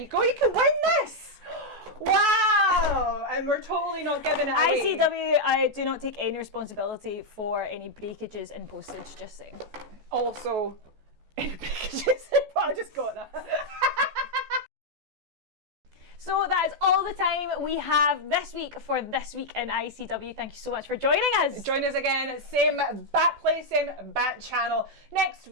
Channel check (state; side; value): late; left; 14 ms